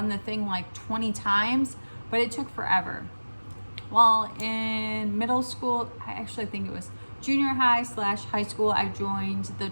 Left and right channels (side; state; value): both; inverted; correlation -1.00